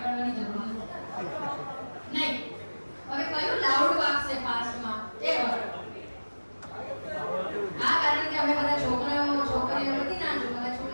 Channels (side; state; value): both; inverted; correlation -1.00